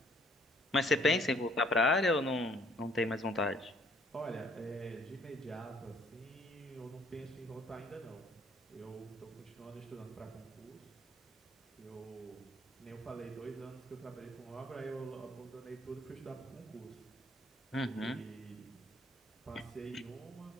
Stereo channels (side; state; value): both; normal; correlation 0.61